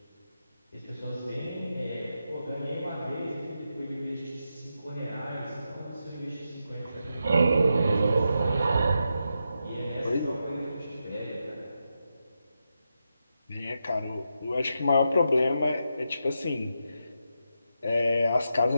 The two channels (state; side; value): inverted; both; correlation -0.86